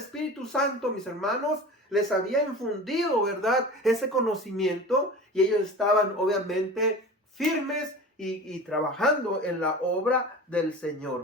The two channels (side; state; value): both; normal; correlation 0.35